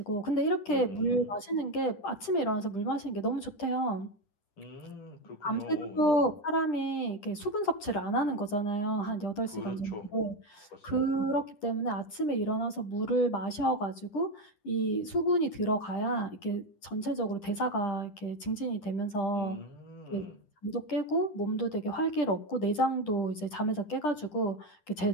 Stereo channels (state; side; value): late; right; 10 ms